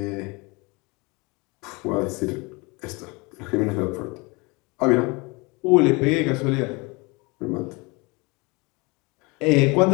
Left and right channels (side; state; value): right; quieter; 27.0 dB